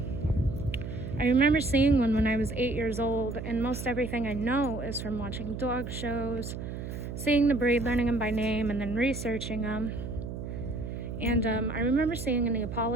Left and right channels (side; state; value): right; noise; hum, 7 dB below the sound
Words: remember seeing one when I was 8 years old, and most everything I know is from watching dog shows, seeing the breed, learning them by name, and then researching them. And I remember seeing a